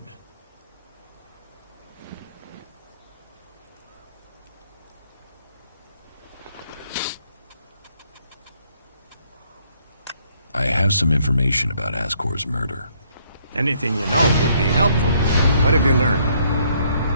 I have some information about Ascor's murder. Anything you know would be helpful. What have you learned?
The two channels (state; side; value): inverted; both; correlation -0.68